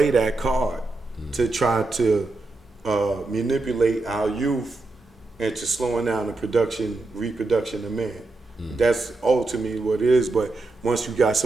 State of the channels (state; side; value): quieter; left; 3.2 dB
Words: that card to try to manipulate our youth into slowing down the reproduction of man. That's ultimately what it is. But once you got